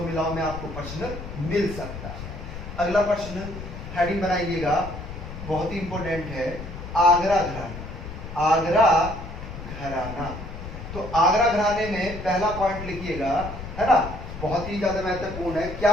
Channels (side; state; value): left; noise; rumble, 10 dB below the sound